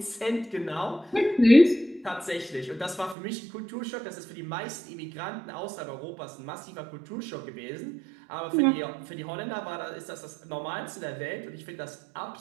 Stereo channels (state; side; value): drops out; left; at 3.2 s